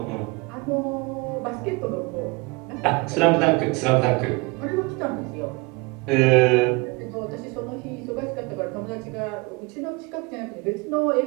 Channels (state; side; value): quieter; left; 26.4 dB